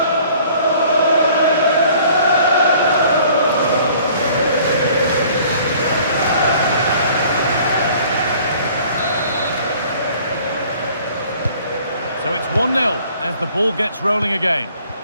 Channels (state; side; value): inverted; both; correlation -0.54